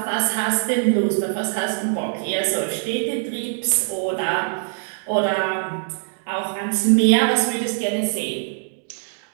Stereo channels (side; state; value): left; silent; 64 dB below the other